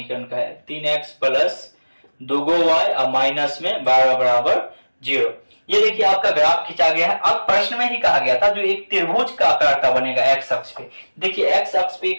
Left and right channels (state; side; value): inverted; both; correlation -1.00